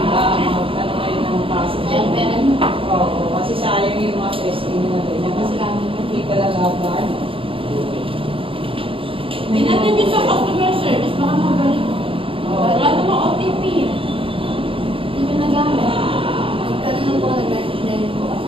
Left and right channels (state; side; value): late; left; 0.26 ms